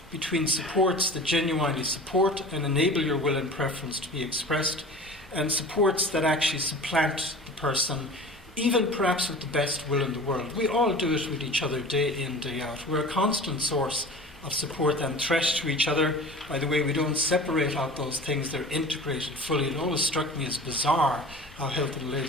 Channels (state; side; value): normal; both; correlation 0.39